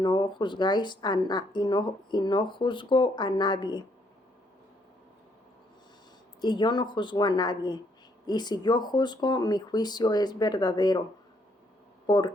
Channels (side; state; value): both; normal; correlation 0.70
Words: juzgáis y no juzgo a nadie. Y yo no juzgo a nadie. Y si yo juzgo, mi juicio es verdadero,